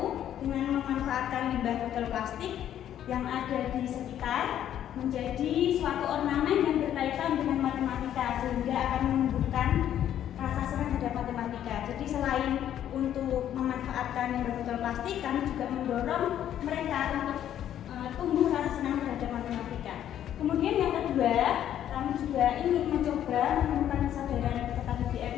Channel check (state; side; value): quieter; right; 10.8 dB